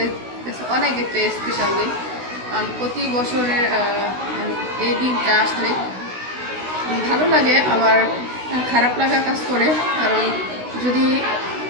কাছে অনেক একটা স্পেশাল দিন, কারণ প্রতি বছরের এই দিনটা আসলে ভালো লাগে, আবার খারাপ লাগা কাজ করে। কারণ যদি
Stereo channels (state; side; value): late; left; 16 ms